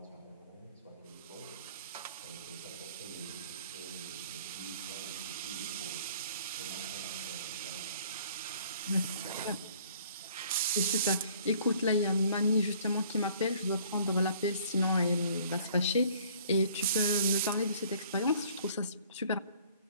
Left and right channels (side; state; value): both; inverted; correlation -0.55